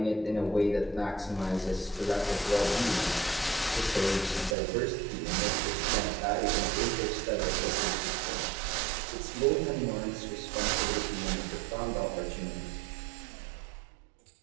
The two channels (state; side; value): drops out; left; at 4.5 s